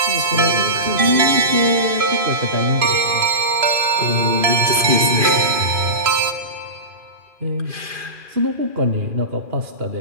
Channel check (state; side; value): late; left; 2.4 ms